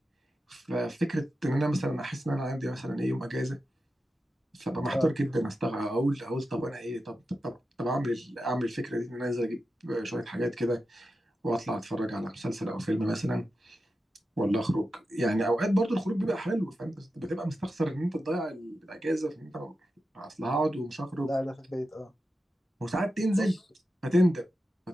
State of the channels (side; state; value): both; normal; correlation 0.91